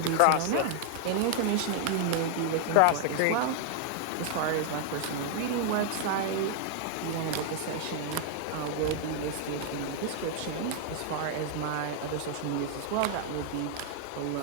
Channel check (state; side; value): different; both; correlation 0.00